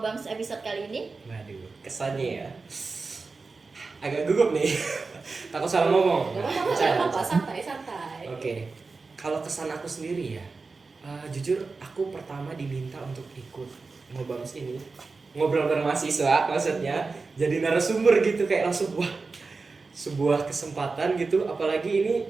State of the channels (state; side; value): quieter; left; 4.1 dB